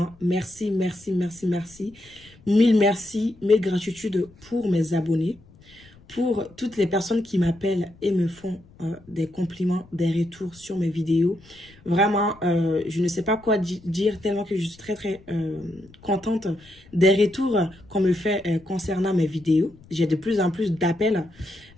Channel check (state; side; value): noise; left; rumble, 26 dB below the sound